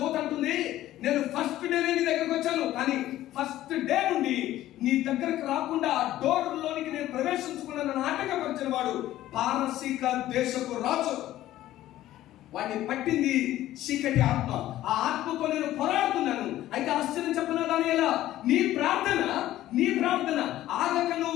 అంటుంది, నేను ఫస్ట్ డే నీ దగ్గరకు వచ్చాను, కానీ ఫస్ట్ డే నుండి నీ దగ్గరకు రాకుండా ఆ డోర్ లోనికి నేను ప్రవేశించుకున్న నాటకపరిచిన వాడు పారసీక దేశపు రాజు. వాడిని పట్టింది చీకటి ఆత్మ. ఆ ఆత్మతో నేను పోరాడుతున్నాను. అయితే ఆశ్చర్యం చెప్పనా దానియేలా, నీ ప్రార్థన ఆగక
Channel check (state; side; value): quieter; right; 14.2 dB